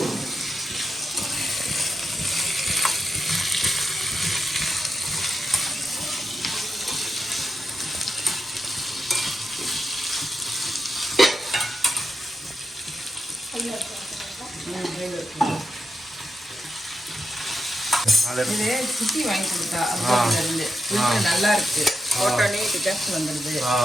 இது சுத்தி வாங்கி கொடுத்தா இருந்து நல்லா இருக்கு. போட்டோனே டிகாஸ்ட் வந்துடுது.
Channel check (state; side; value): normal; both; correlation 0.86